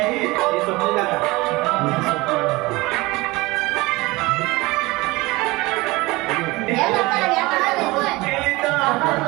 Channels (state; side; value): quieter; left; 21.9 dB